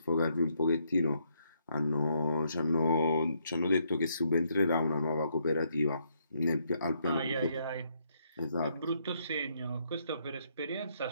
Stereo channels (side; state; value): both; inverted; correlation -0.73